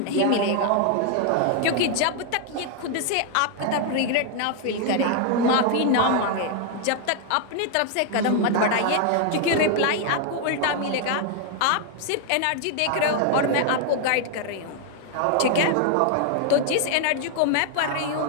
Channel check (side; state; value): both; different; correlation 0.00